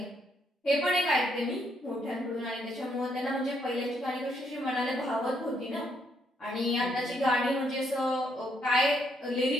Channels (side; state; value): both; normal; correlation 0.73